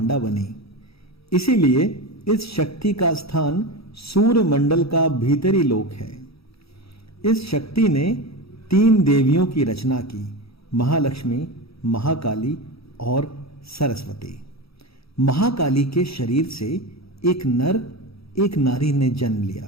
बनी। इसीलिए इस शक्ति का स्थान सूर्य मंडल का भीतरी लोक है। इस शक्ति ने 3 देवियों की रचना की, महालक्ष्मी, महाकाली और सरस्वती। महाकाली के शरीर से एक नर एक नारी ने जन्म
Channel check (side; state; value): right; late; 0.77 ms